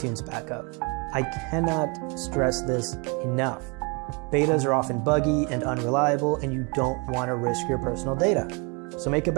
backup. I cannot stress this enough. Betas are often buggy and unreliable, and you don't want to risk your personal data. So make a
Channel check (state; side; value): quieter; left; 31.4 dB